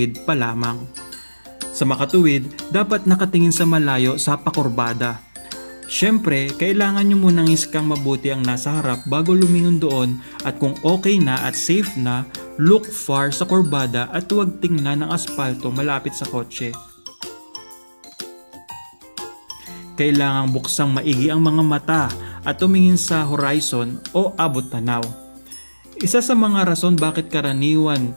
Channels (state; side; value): inverted; both; correlation -1.00